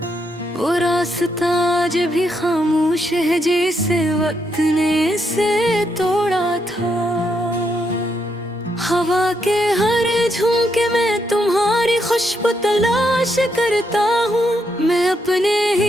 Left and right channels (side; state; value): both; normal; correlation 0.79